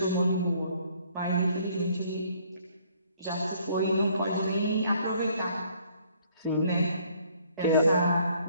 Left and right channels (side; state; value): both; inverted; correlation -0.62